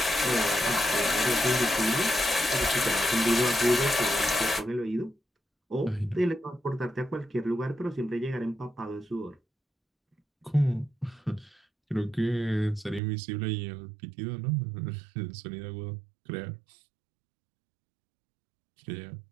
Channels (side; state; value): left; drops out; at 13.0 s